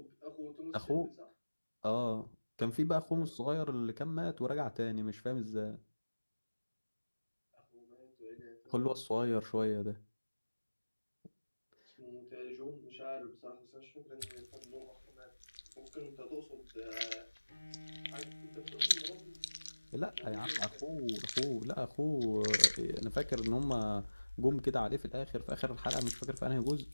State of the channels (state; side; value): inverted; both; correlation -1.00